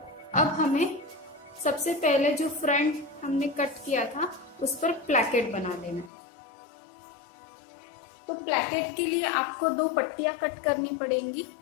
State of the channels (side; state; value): right; drops out; at 6.1 s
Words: अब हमें सबसे पहले जो फ्रंट हमने कट किया था उस पर प्लैकेट बना लेना। तो प्लैकेट के लिए आपको 2 पट्टियां कट करनी पड़ेंगी।